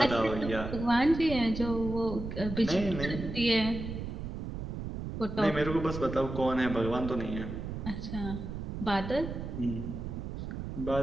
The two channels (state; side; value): noise; right; rumble, 6 dB below the sound